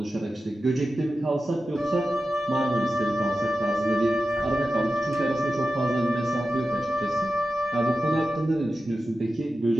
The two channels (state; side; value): normal; both; correlation 0.92